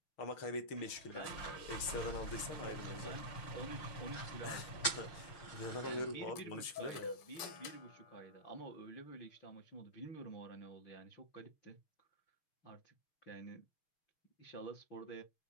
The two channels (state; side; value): late; right; 6.3 ms